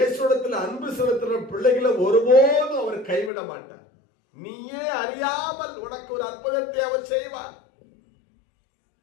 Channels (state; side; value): drops out; right; at 3.3 s